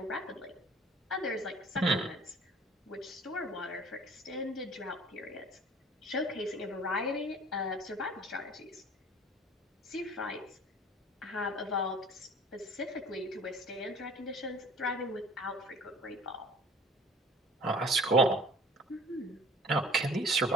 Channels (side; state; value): both; normal; correlation 0.48